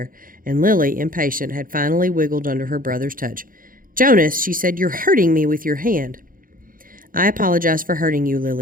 and Lily, impatient, had finally wiggled under her brother's touch. "Jonas," she said, "you're hurting me with your hand." "I apologize for hurting you,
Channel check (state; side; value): late; left; 0.40 ms